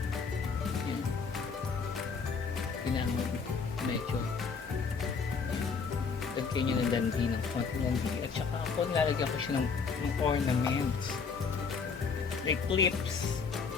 Yan. Kailangan medyo lagyan nyo ng dandi, ng konting dandi. At saka ako nilalagyan ko siya ng ornaments. Like clips.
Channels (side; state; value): right; quieter; 5.4 dB